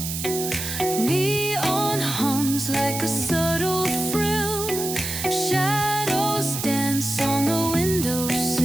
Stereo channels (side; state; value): right; noise; hiss, 5 dB below the sound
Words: Neon hums like a subtle thrill. Shadows dance on the